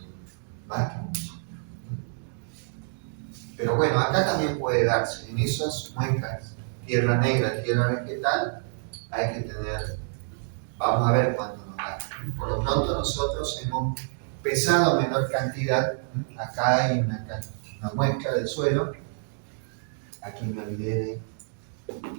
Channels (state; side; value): silent; left; 60 dB below the other